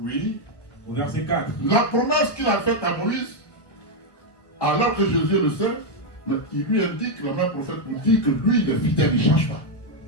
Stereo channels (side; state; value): right; late; 1.5 ms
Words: Au verset 4. La promesse qu'il a faite à Moïse, alors que Jésus le sait, mais il lui indique, le même prophète nous dit que lui, il est fidèle, il ne change pas.